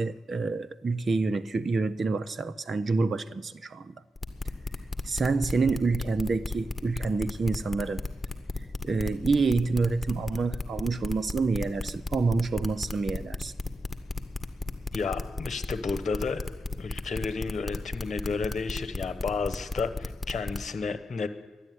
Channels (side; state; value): both; normal; correlation 0.88